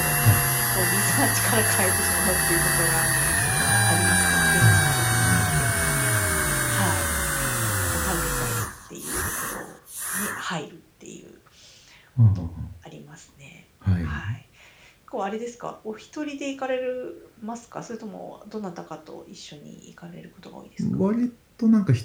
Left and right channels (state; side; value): identical; both; correlation 1.00